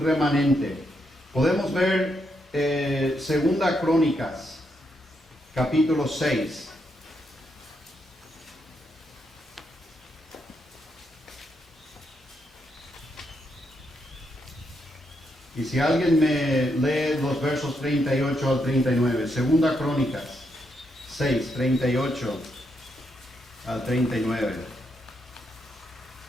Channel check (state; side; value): normal; both; correlation 0.80